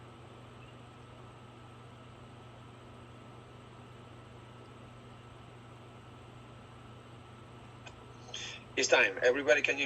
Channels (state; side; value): identical; both; correlation 1.00